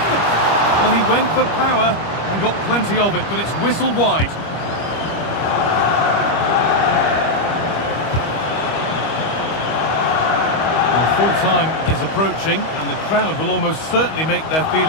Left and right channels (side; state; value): right; late; 25 ms